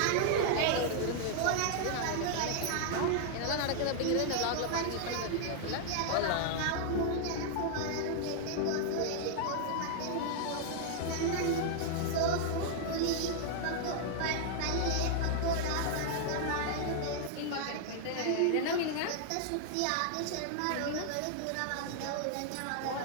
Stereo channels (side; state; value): both; different; correlation -0.01